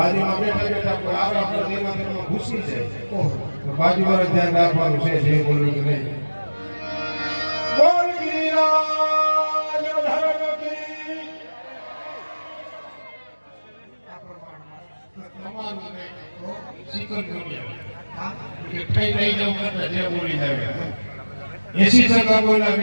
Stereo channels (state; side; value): inverted; both; correlation -1.00